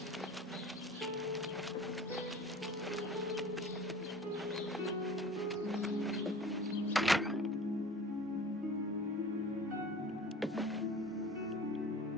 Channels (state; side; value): normal; both; correlation 0.42